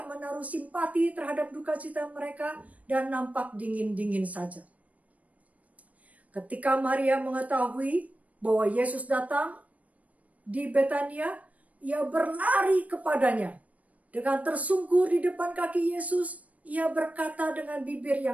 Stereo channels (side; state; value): left; late; 0.069 ms